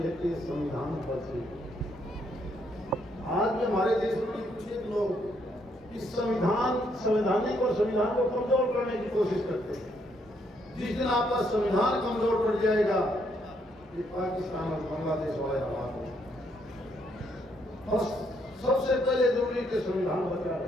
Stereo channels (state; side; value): normal; both; correlation 0.73